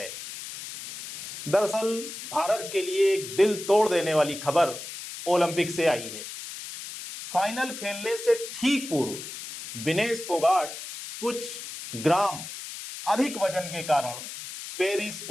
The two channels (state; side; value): noise; left; hiss, 10 dB below the sound